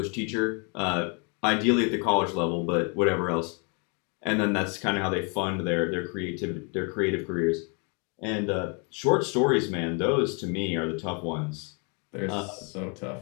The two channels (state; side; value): quieter; right; 35.6 dB